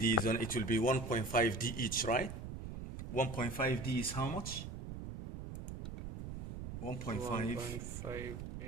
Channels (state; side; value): noise; right; rumble, 7 dB below the sound